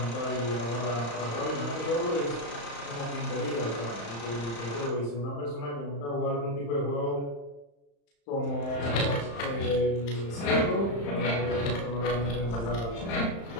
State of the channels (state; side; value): late; right; 35 ms